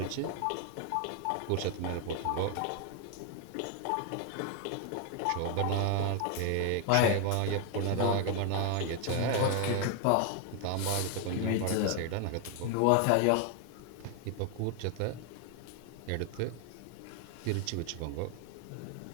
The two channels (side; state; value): both; different; correlation 0.00